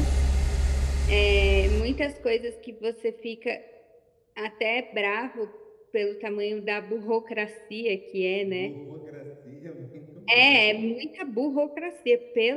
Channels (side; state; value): both; identical; correlation 1.00